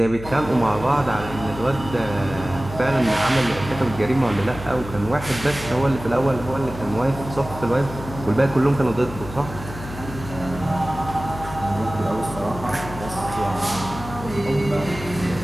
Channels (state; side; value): noise; left; hum, 12 dB below the sound